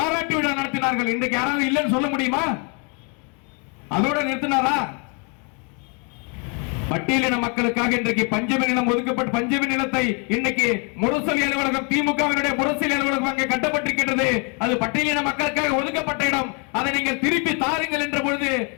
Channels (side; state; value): right; quieter; 35.2 dB